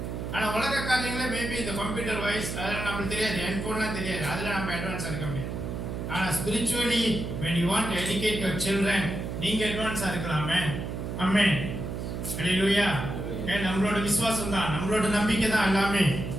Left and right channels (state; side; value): noise; right; hum, 5 dB below the sound